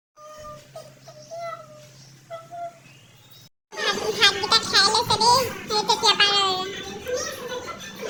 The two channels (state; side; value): identical; both; correlation 1.00